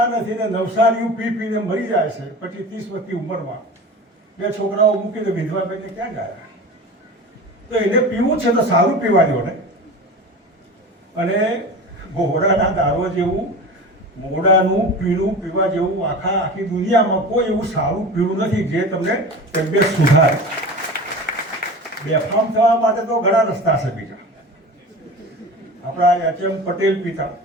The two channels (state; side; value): normal; both; correlation 0.33